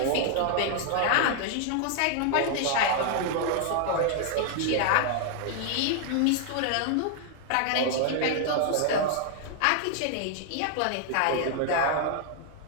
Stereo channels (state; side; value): different; both; correlation 0.00